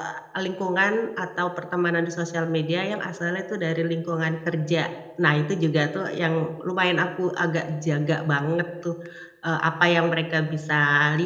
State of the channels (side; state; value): both; identical; correlation 1.00